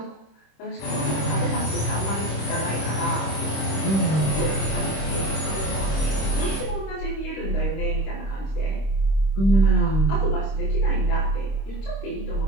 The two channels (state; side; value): late; right; 26 ms